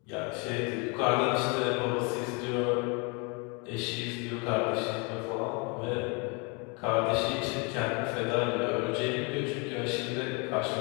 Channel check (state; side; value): quieter; right; 32.2 dB